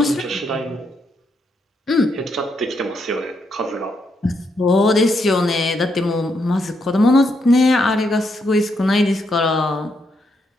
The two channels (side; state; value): both; normal; correlation 0.78